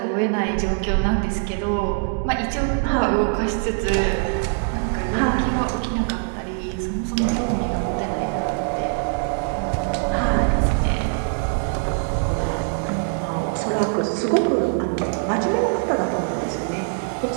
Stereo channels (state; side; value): silent; left; 59 dB below the other